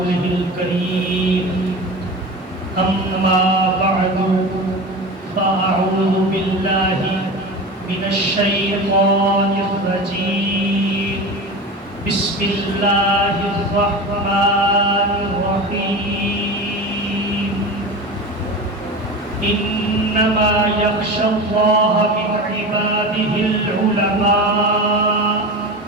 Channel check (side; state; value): both; normal; correlation 0.30